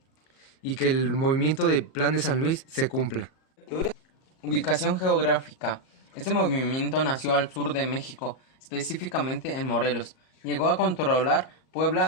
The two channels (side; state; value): right; late; 38 ms